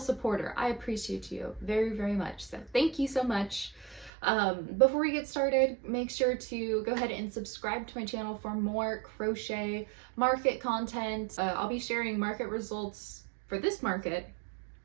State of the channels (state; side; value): drops out; left; at 4.1 s